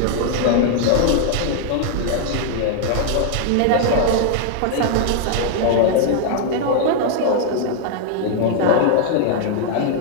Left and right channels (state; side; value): different; both; correlation -0.01